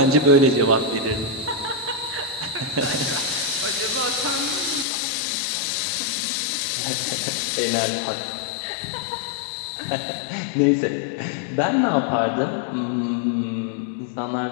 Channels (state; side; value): drops out; right; at 4.9 s